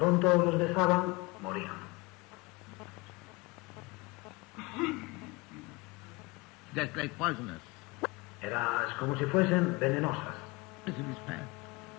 los besaban, morían. Just like poisonous. Es como si fuesen venenosas. This is fact.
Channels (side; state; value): right; quieter; 24.2 dB